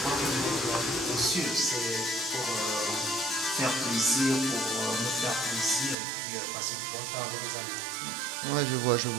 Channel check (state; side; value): drops out; left; at 6.0 s